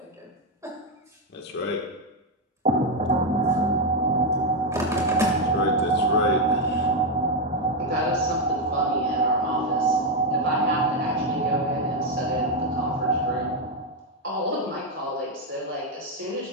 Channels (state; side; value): normal; both; correlation 0.05